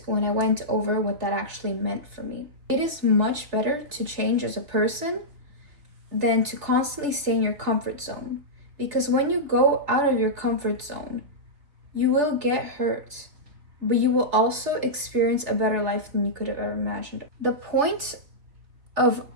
when I went over what that actually meant for me. It is much better to change as a person than to constantly stay in your comfort zone. Because when you go out of your comfort zone, you will get hurt, but you will also experience a better life than you could have ever imagined. The point of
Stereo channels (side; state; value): left; late; 3.4 ms